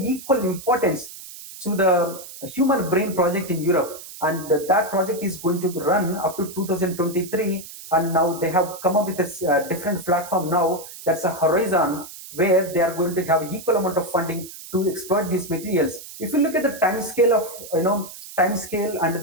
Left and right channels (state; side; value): noise; right; hiss, 14 dB below the sound